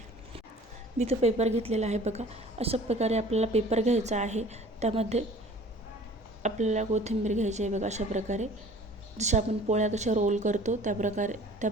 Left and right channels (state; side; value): normal; both; correlation 0.47